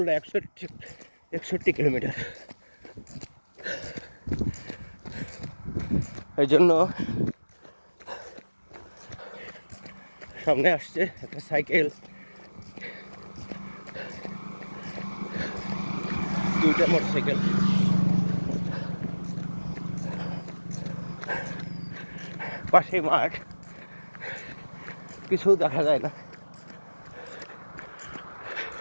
61 kilometre. এই জন্য সামনে আসছে একটা সাইকেল, দুইটা মোটরসাইকেল। পাশে মাঠ, কিছু দেখা যায় না।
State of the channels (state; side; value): inverted; both; correlation -1.00